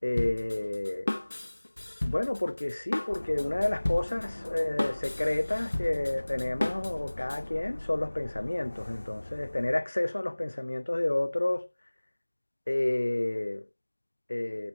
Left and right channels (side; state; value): both; inverted; correlation -1.00